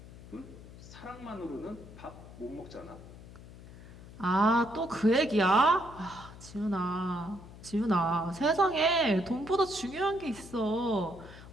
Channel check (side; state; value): left; noise; hum, 17 dB below the sound